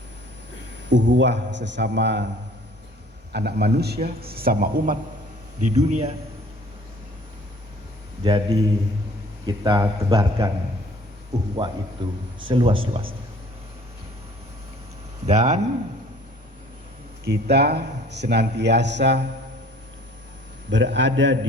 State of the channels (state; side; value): normal; both; correlation 0.53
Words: ukhuwah sesama anak manusia, sesama umat di dunia. Jadi kita tebarkan ukhuwah itu seluas-luasnya. Dan kita senantiasa berada